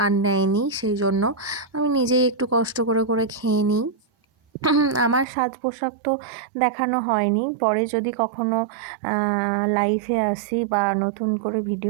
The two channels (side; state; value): left; drops out; at 5.2 s